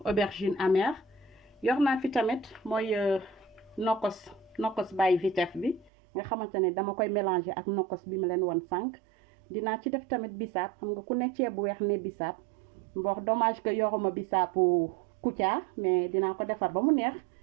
aubergine amère yor naa fi tamit mooy nokos by Vitef bi nga xamante ne dama koy mélanger ak nokos bi ma leen won sànq dinaa ci def tamit bisaab xam nga ku ne ceeb bu weex ne bisaab mbox dommage que yoruma bisaabu Kouthia mais dinaa ko defar ba mu neex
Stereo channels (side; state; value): left; drops out; at 5.9 s